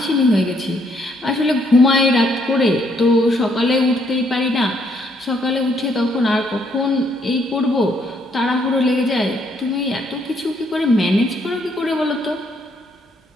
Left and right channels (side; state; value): both; normal; correlation 0.71